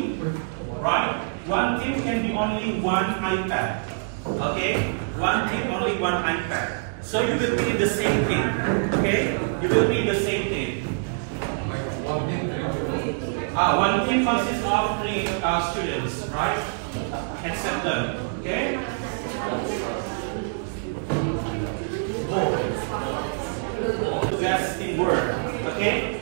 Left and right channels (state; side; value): silent; left; digital silence